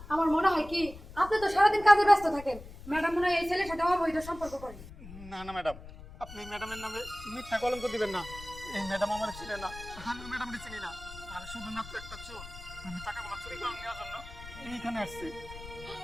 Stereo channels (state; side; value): noise; left; rumble, 15 dB below the sound